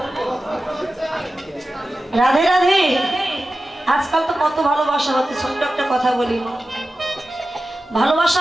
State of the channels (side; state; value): both; normal; correlation 0.94